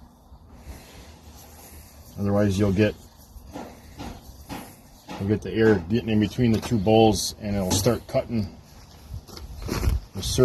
Otherwise you'll get the air getting in between the two bowls, and it'll start cutting the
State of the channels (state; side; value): identical; both; correlation 1.00